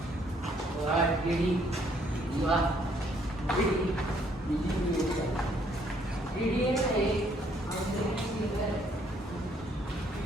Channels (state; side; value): normal; both; correlation 0.66